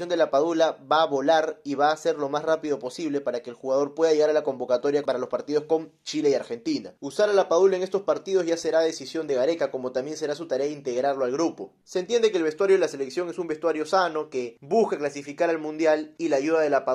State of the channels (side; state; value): both; identical; correlation 1.00